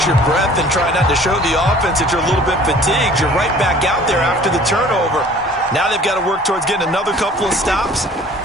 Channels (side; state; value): both; normal; correlation 0.50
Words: your breath and try not to show the offense that you're a little bit fatigued. You're right back out there after the turnover. Now they've got to work towards getting another couple of stops